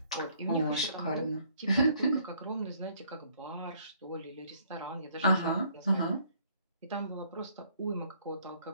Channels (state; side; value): inverted; both; correlation -0.63